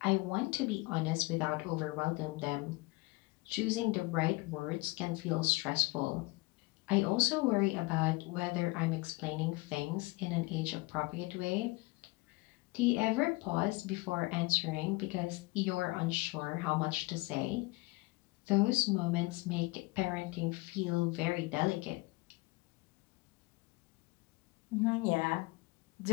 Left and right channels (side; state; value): right; quieter; 23.2 dB